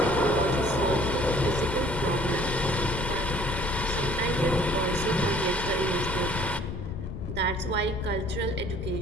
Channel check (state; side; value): noise; left; rumble, 8 dB below the sound